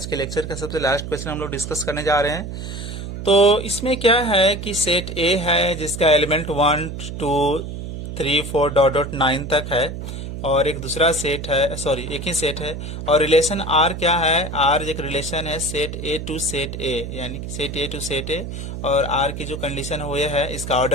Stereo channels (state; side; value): noise; right; hum, 7 dB below the sound